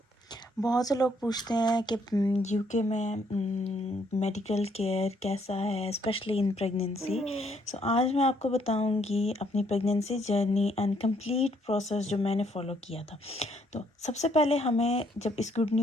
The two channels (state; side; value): normal; both; correlation 0.69